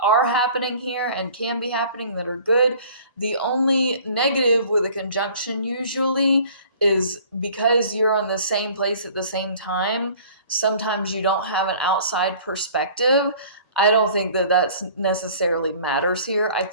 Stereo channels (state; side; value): inverted; both; correlation -0.50